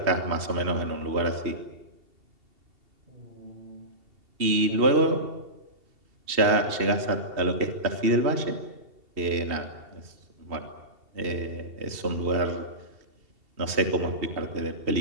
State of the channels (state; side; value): late; left; 2.7 ms